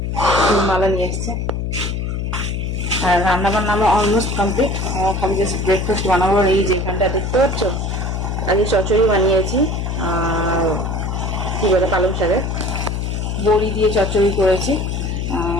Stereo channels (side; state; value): left; noise; hum, 2 dB below the sound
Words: মালা নিয়ে এসছে আর রান্না বান্না আমার অলমোস্ট কমপ্লিট। খালি জাস্ট ব্রেকফাস্ট বানাবো। এই যে এখানটা দেখতে পাচ্ছ, আজকে চচ্চড়ি বানিয়েছি আর কি বলে পালং শাকের বড়ি দিয়ে চচ্চড়ি করেছি।